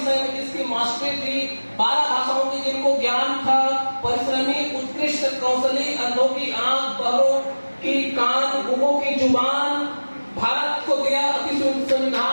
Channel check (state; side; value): inverted; both; correlation -1.00